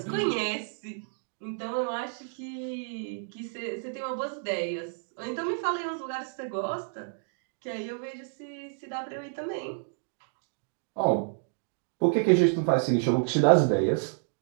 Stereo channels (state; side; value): silent; left; digital silence